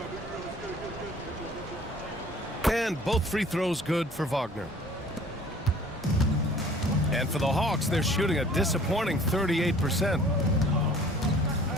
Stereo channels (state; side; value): normal; both; correlation 0.51